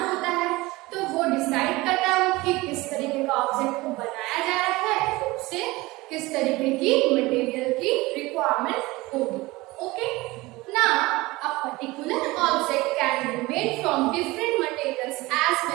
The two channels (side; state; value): left; quieter; 21.0 dB